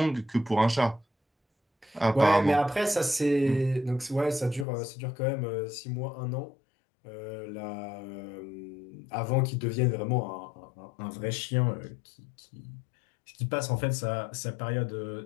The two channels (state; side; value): drops out; right; at 4.7 s